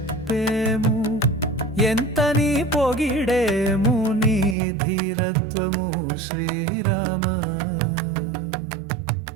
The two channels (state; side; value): drops out; left; at 4.5 s